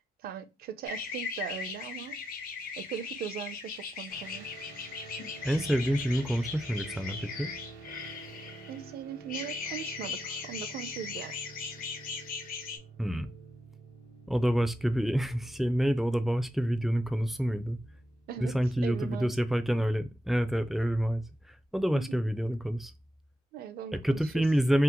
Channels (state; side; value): normal; both; correlation 0.88